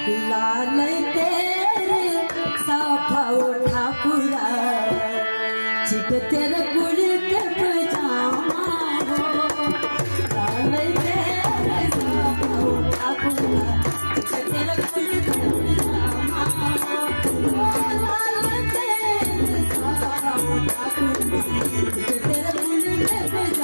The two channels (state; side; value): inverted; both; correlation -1.00